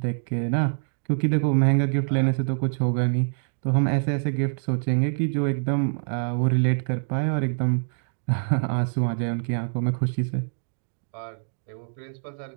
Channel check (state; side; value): silent; left; digital silence